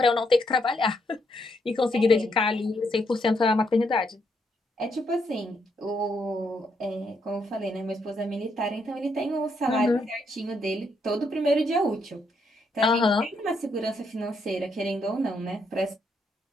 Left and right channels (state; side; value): normal; both; correlation 0.76